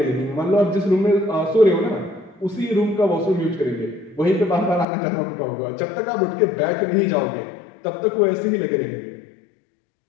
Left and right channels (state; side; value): drops out; right; at 4.9 s